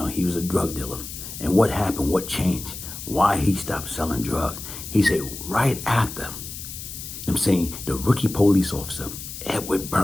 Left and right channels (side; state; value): left; noise; hiss, 10 dB below the sound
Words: he was a drug dealer. And what happened? What changed? Why he stopped selling drugs? He said right after, the rookie police officer, Edward